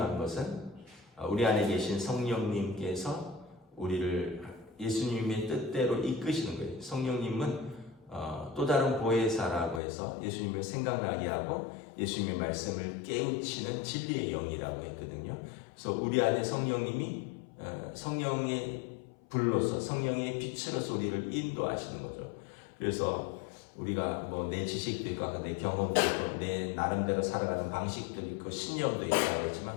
것은 우리 안에 계신 성령님께서 우리를 예수님의 뜻대로 이끄시는 거예요. 성령님은 또 다른 보혜사라고 해서 예수님을 생각나게 하고 예수님의 말씀을 깨우치는 진리의 영이라고 했거든요. 그래서 우리 안에 성령님이 성령의 불로서 성령의 빛으로서 우리를 인도하시는 거죠. 그래서 우리가 뭐 내 지식도 있고 내 경험도 있고 내 나름대로 살아가는 방식도 있고 신념도 있다고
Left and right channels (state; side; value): drops out; right; at 9.8 s